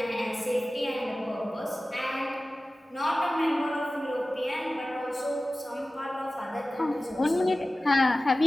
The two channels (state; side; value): normal; both; correlation 0.96